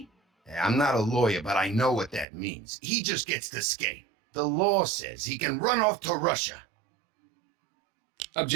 I'm not a lawyer, but I know what that means. He just gets to skate. The law says he can run off to Russia.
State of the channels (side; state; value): left; drops out; at 2.2 s